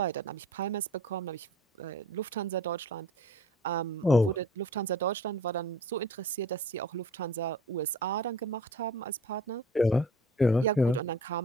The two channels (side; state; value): both; normal; correlation 0.46